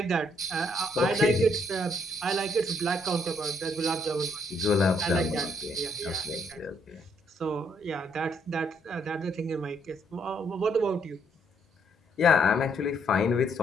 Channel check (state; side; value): normal; both; correlation 0.70